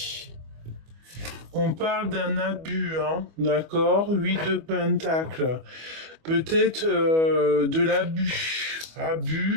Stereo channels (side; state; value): left; late; 25 ms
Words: On parle d'un abus, hein, d'accord? 8 de pentacles. Peut-être de l'abus.